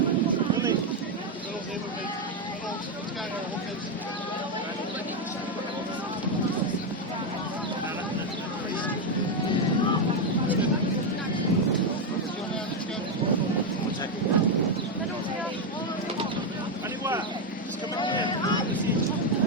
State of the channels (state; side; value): normal; both; correlation 0.05